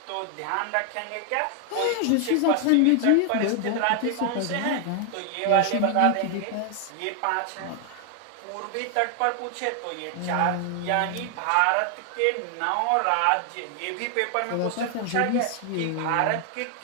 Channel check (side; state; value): both; different; correlation 0.00